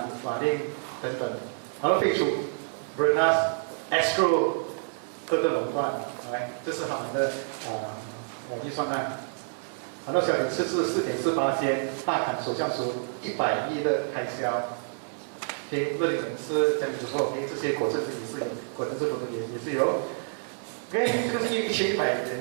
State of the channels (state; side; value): silent; left; 58 dB below the other